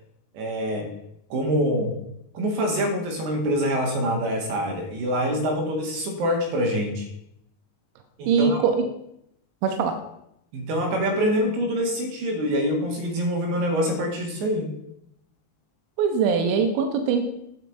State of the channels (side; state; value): left; late; 19 ms